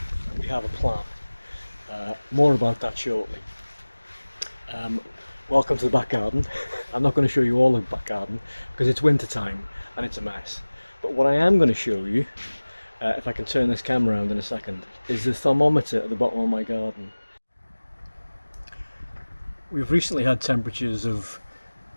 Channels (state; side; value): inverted; both; correlation -1.00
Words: we have a plan. More about that shortly. Welcome to the back garden. I'm not going to show you all of the back garden because it's winter time and it's a mess. But what I am going to show you, if I can turn this camera around in a second, is the thermometer at the bottom of my garden. We've recently had temperatures of